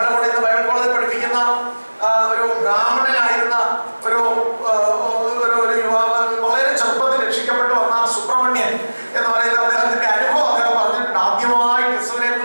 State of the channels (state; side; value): inverted; both; correlation -1.00